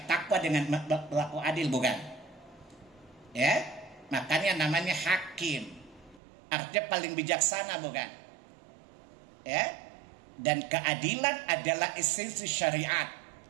takwa dengan berlaku adil, bukan? Ya, makanya namanya hakim. Artinya paling bijaksana, bukan? Ya, dan keadilan adalah esensi syariat.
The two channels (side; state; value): left; drops out; at 6.2 s